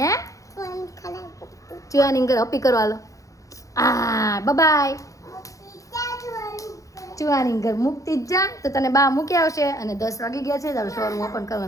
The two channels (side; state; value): right; late; 0.16 ms